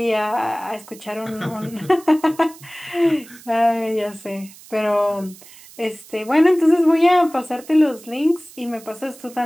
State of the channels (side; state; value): right; noise; hiss, 21 dB below the sound